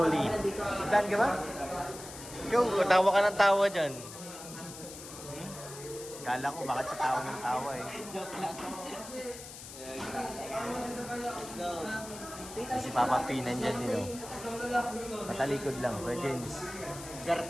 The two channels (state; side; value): noise; left; hiss, 13 dB below the sound